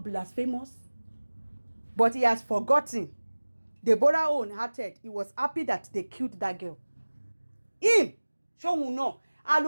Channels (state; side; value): inverted; both; correlation -1.00